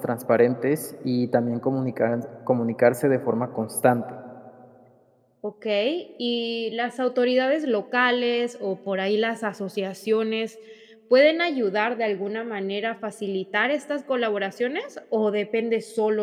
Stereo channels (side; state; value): both; identical; correlation 1.00